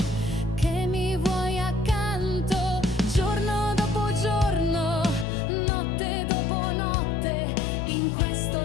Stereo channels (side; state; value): right; drops out; at 5.2 s